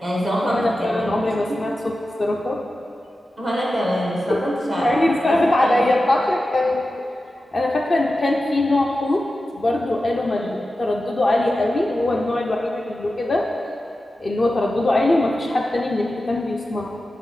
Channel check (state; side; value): normal; both; correlation 0.93